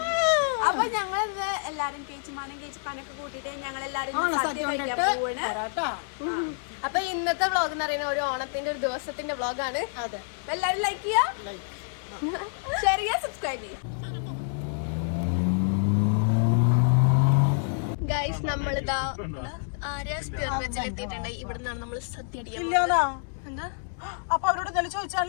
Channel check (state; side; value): silent; right; 60 dB below the other